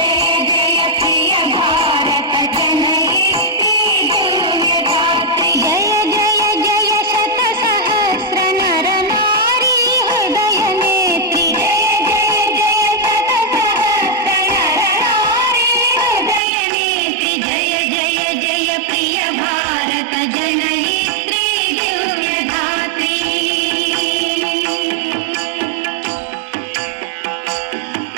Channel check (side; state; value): left; drops out; at 16.4 s